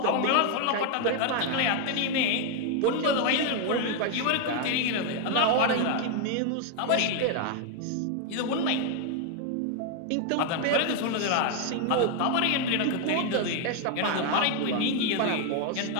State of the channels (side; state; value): both; different; correlation 0.01